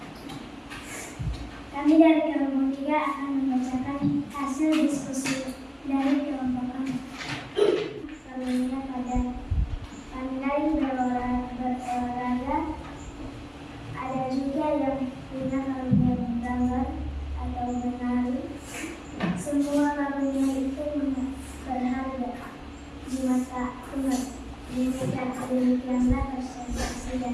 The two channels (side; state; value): both; identical; correlation 1.00